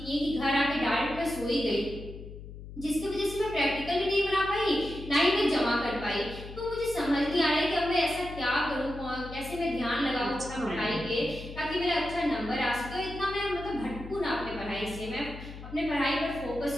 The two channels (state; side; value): noise; left; hum, 13 dB below the sound